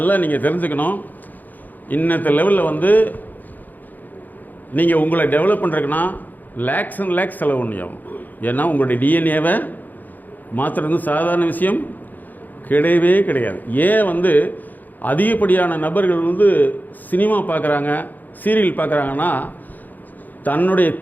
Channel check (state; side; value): late; right; 0.084 ms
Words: நீங்கள் தெரிஞ்சுக்கணும். இன்னத்த லெவலில் வந்து நீங்கள் உங்களை டெவலப் பண்ணுறதுக்குன்னா லேக்ஸ் அண்ட் லேக்ஸ் செலவு பண்ணியாகும். ஏன்னா உங்களுடைய டிஎன்ஏவை மாற்றுறது சாதாரண விஷயம் கிடையவே கிடையாது. ஏன் வந்து அதிகப்படியான நபர்கள் வந்து சினிமா பார்க்குறாங்க, சீரியல் பார்க்குறாங்கன்னா தன்னுடைய